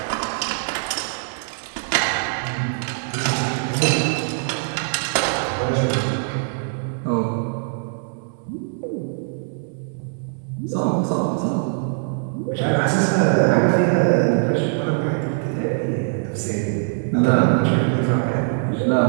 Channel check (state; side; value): silent; left; 64 dB below the other